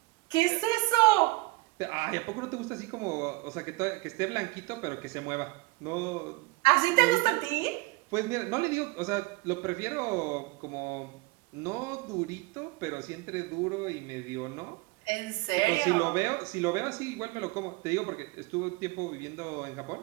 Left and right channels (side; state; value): left; quieter; 22.7 dB